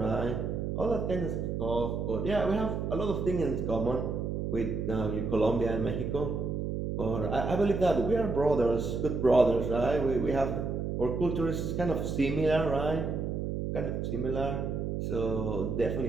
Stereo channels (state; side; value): noise; right; hum, 2 dB below the sound